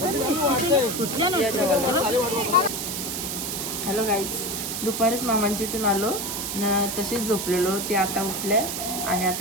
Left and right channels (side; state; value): right; noise; hiss, 4 dB below the sound